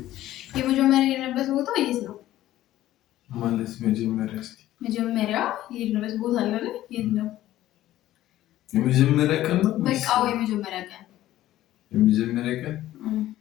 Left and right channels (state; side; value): quieter; right; 14.3 dB